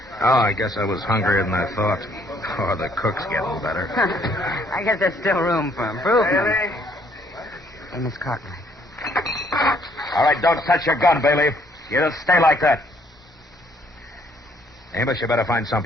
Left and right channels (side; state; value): both; normal; correlation 0.66